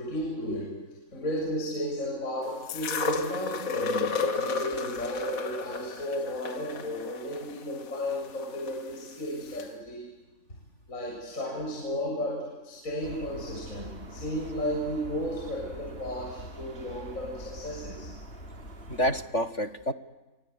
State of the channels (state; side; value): late; right; 3.5 ms